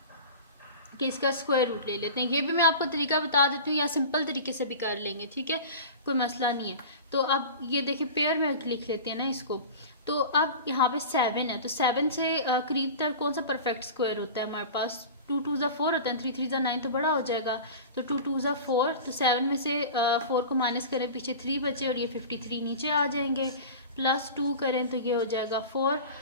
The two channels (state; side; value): inverted; both; correlation -0.34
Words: कि इसका स्क्वायर रूट ले लेते हैं। ये भी मैं आपको तरीका बता देती हूँ, या सिंपल तरीके से भी कर लेंगे, ठीक है, कोई मसला नहीं है। तो अब ये देखिए पेयर में लिख लेते हैं ना इसको। तो अब यहाँ पे 7 है, तो 7 से करीब तक कौन सा परफेक्ट स्क्वायर होता है हमारे पास 2 2 ज़ा 4 होता है, 3 3 ज़ा 9 तो बड़ा हो जाएगा। तो 2 2 ज़ा 4, तो 7 में से 4 को माइनस करें, पीछे 3 बचे और ये 53 नीचे आ जाएंगे। +2 करें तो ये हो जाएगा 4।